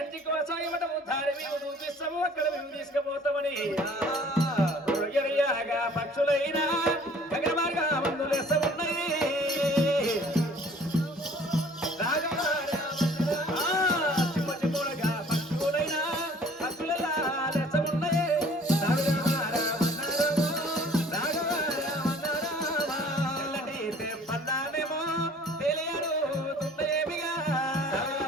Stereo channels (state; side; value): normal; both; correlation 0.52